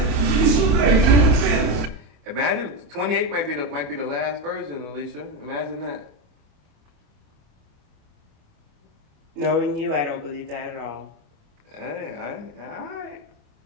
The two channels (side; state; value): left; late; 28 ms